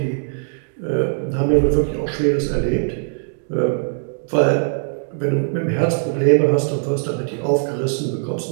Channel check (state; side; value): silent; left; digital silence